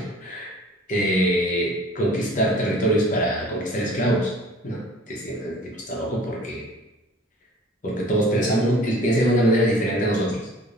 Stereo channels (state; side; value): normal; both; correlation 0.48